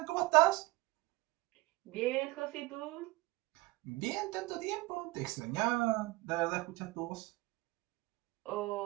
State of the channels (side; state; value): left; quieter; 21.3 dB